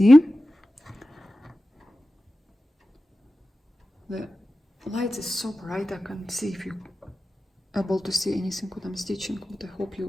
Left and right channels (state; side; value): normal; both; correlation 0.94